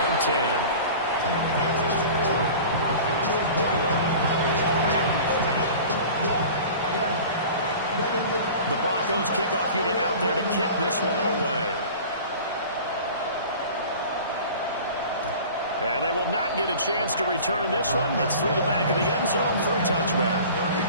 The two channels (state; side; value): inverted; both; correlation -0.40